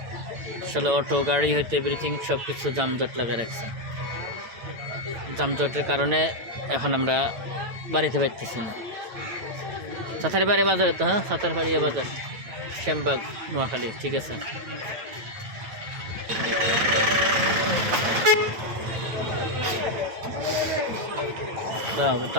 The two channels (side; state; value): left; late; 9.0 ms